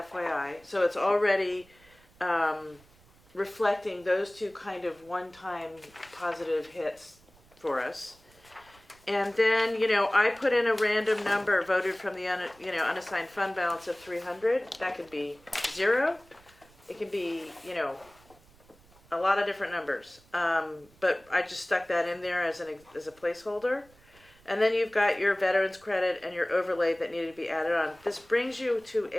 So it's already reflecting those two kind of one-time positive hits for us. And then, I put in a random number voted from the unassigned fund balance of 300. That could be 0. It could be, a lot of different numbers. But I just stuck that in there as a placeholder. And then you've got your veterans credit and your overlay that needed to be added on. This brings you to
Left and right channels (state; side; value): noise; right; rumble, 28 dB below the sound